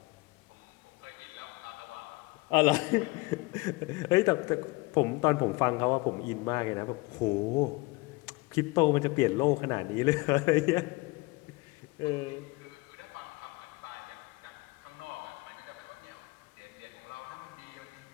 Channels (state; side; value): quieter; right; 24.2 dB